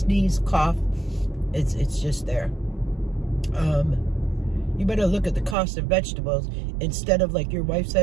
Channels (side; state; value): left; drops out; at 5.6 s